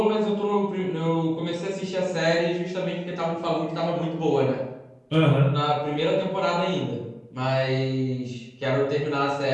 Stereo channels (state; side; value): identical; both; correlation 1.00